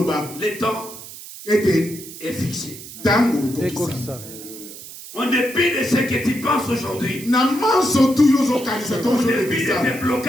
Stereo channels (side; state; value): right; noise; hiss, 14 dB below the sound